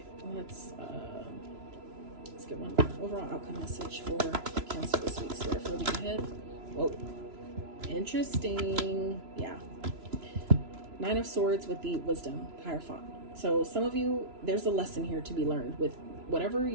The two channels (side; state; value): left; late; 3.0 ms